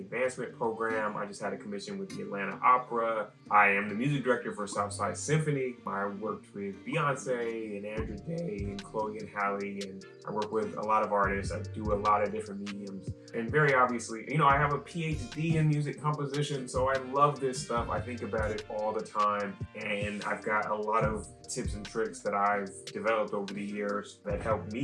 Program. I just had a commission with the Atlanta Opera. I am the music director for Southside Symphony. I worked with Beyonce and Andrew Day and Chloe and Halle, and I work with a lot of artists. I do a lot of different mediums. And very obviously, I have a PhD in music composition, so I love this stuff. I think about it all the time, and I've got a lot of tips and tricks that I've developed over the years that help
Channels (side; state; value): both; identical; correlation 1.00